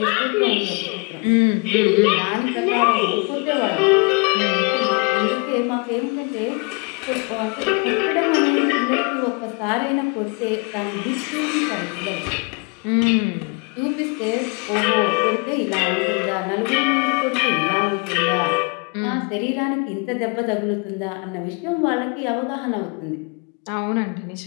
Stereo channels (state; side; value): quieter; right; 31.2 dB